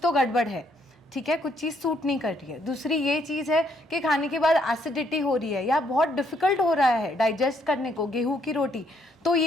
तो गड़बड़ है, ठीक है, कुछ चीज़ सूट नहीं कर रही है। दूसरी ये चीज़ है कि खाने के बाद एसिडिटी हो रही है या बहुत डिफिकल्ट हो रहा है डाइजेस्ट करने को गेहूं की रोटी, तो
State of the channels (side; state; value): both; normal; correlation 0.71